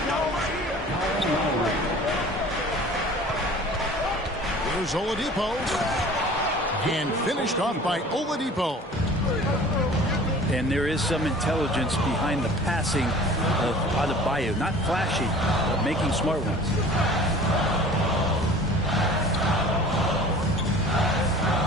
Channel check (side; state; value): both; normal; correlation 0.45